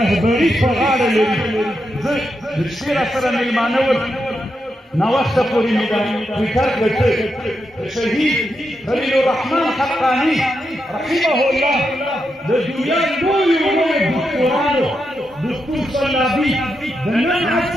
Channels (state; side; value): normal; both; correlation 0.85